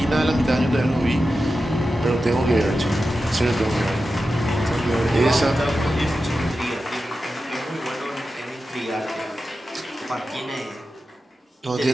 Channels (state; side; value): normal; both; correlation 0.92